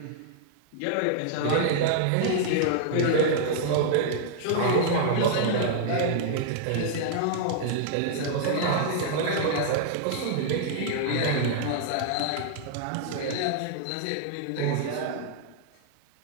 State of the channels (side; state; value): both; different; correlation -0.01